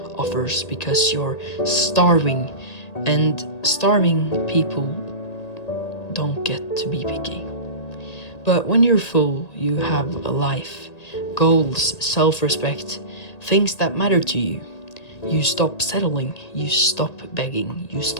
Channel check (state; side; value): late; right; 1.8 ms